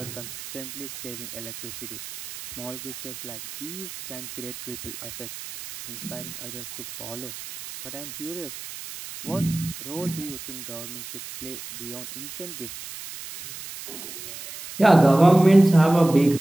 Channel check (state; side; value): noise; right; hiss, 11 dB below the sound